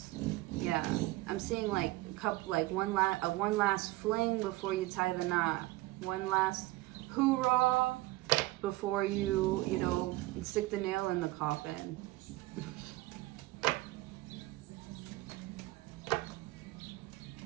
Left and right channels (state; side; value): quieter; left; 19.2 dB